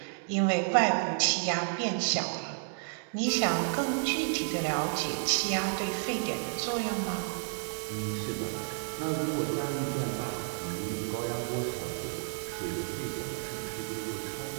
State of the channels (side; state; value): left; silent; digital silence